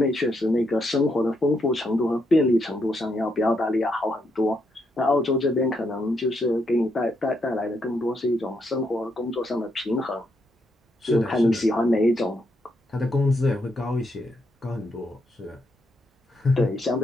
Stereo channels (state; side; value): normal; both; correlation 0.78